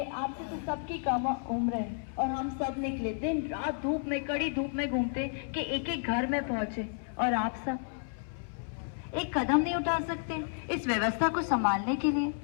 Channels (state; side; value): silent; right; 57 dB below the other